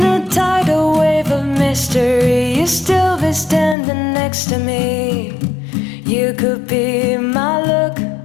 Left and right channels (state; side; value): drops out; right; at 3.8 s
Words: a tidal wave of mystery. You still be standing next to me. You could be my luck.